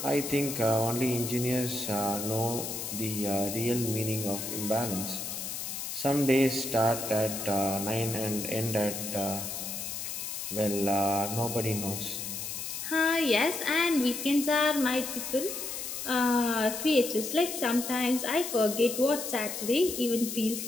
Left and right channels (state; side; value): noise; left; hiss, 5 dB below the sound